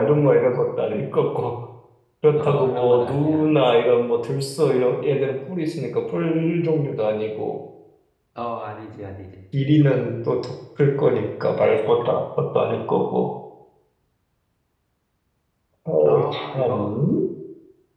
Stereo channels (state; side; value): identical; both; correlation 1.00